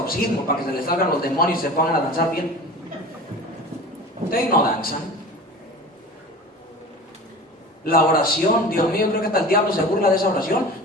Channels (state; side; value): normal; both; correlation 0.36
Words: para que se les salgan los demonios y se pongan a danzar bien. Ustedes no danzan. La oración, Dios mío, creo que hasta el diablo se burla de esa oración.